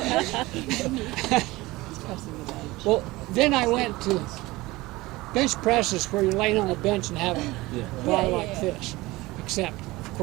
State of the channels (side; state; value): left; quieter; 20.2 dB